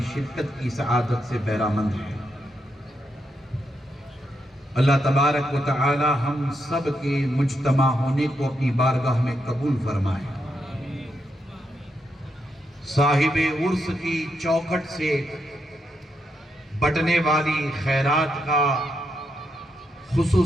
شرکت کی سعادت سے بہرامند ہے. اللہ تبارک و تعالی ہم سب کے مجتمع ہونے کو اپنی بارگاہ میں قبول فرمائے. صاحب عرس کی چوکھٹ سے بٹنے والی خیرات کا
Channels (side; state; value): both; normal; correlation 0.81